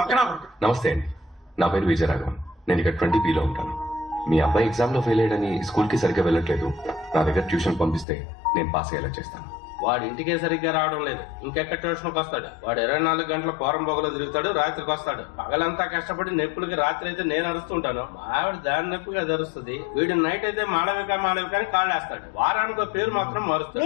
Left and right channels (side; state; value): right; drops out; at 8.1 s